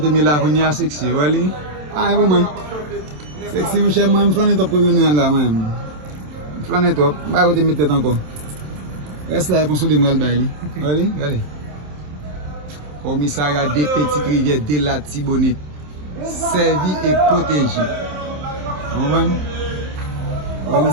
Mila Konya sexy, voilà. Ah, vraiment. Sexy, mon cher, moi, je flanne top pour venir là, même. Flanne top, bah, côté mettre encore. Reste là pour se démarrer le bail. Allez, allez. Komisaria des petites rivières de latibonit, servi et protégé. On va.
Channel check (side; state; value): left; late; 27 ms